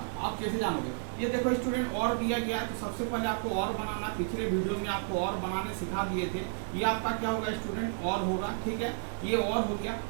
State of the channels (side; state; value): left; silent; digital silence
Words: आप कैसे जानोगे। ये देखो स्टूडेंट, और दिया गया है तो सबसे पहले आपको और बनाना, पिछले वीडियो में आपको और बनाने सिखा दिए थे। ये आपका क्या होगा स्टूडेंट, और होगा, ठीक है। ये और हो गया।